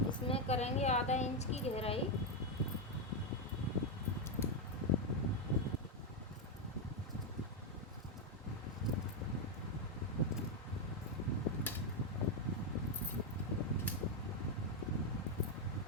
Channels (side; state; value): both; normal; correlation 0.04